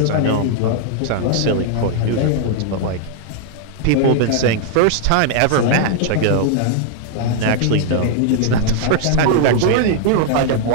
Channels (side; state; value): both; different; correlation -0.01